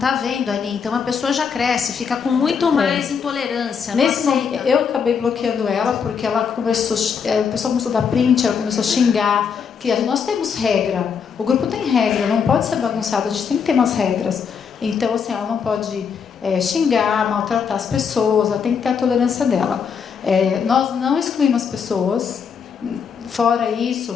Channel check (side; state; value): right; quieter; 6.5 dB